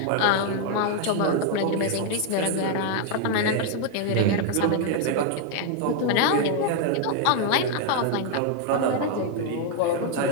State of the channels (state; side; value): different; both; correlation 0.00